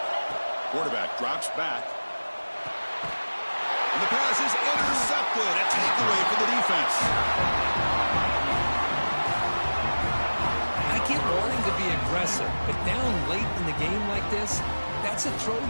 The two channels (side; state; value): both; inverted; correlation -1.00